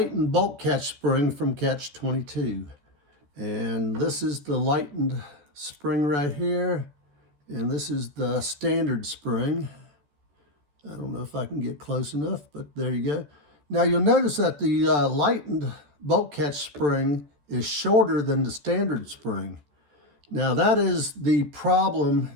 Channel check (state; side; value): late; left; 14 ms